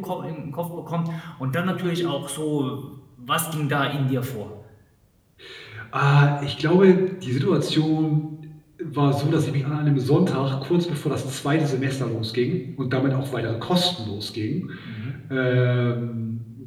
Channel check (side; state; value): both; identical; correlation 1.00